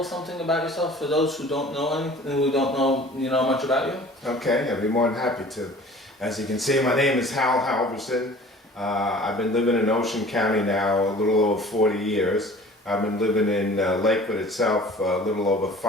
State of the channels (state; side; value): normal; both; correlation 0.46